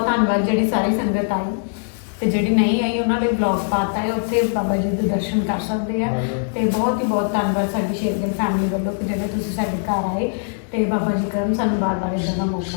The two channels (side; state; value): right; silent; 61 dB below the other